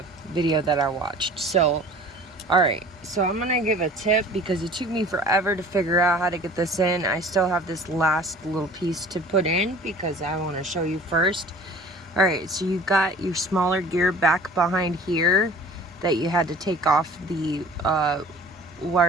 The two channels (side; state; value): both; normal; correlation 0.46